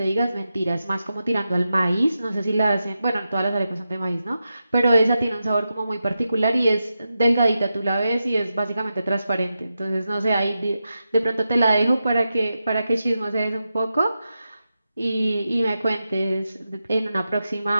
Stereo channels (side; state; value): both; inverted; correlation -0.90